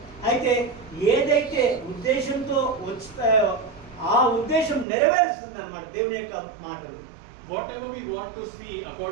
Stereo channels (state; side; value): drops out; left; at 4.9 s